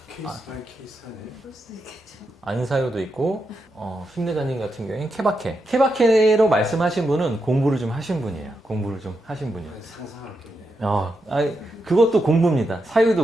케이스 바이 케이스네. 그럴 수도 있겠죠. 안사요도 있고, 힘내자님 같은 경우에는 케바케. 케바케로 말씀하신 분은 공부를 좀 하신 분이에요. 공부를 좀 하신 분이에요. 상상할게요. 그것도 공부입니다.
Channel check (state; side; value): normal; both; correlation 0.85